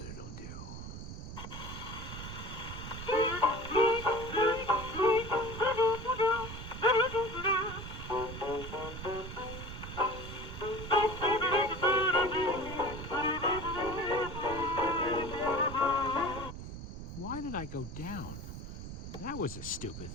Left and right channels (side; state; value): right; noise; rumble, 9 dB below the sound